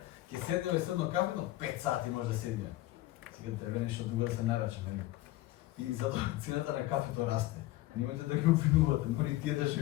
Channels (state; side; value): quieter; right; 17.0 dB